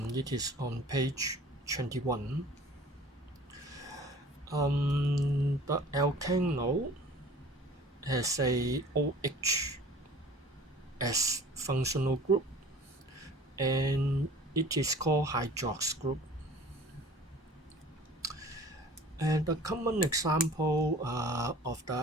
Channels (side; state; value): both; normal; correlation 0.46